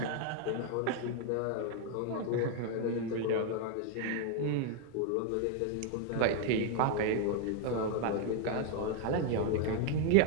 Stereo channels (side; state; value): both; different; correlation 0.01